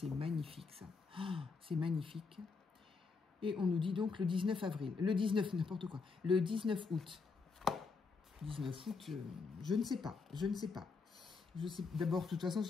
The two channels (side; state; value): right; quieter; 4.7 dB